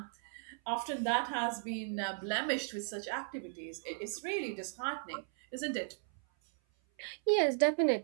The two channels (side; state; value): left; silent; 54 dB below the other